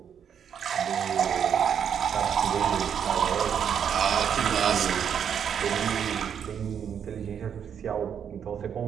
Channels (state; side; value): quieter; left; 8.1 dB